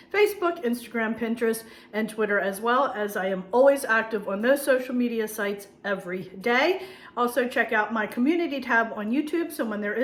Facebook, Instagram, Pinterest, and Twitter, as well, as I am always active on those social media sites every day. Also, check out my community tab on YouTube. So when there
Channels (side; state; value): both; identical; correlation 1.00